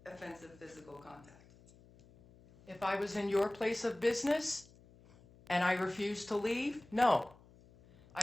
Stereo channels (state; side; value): noise; left; hum, 25 dB below the sound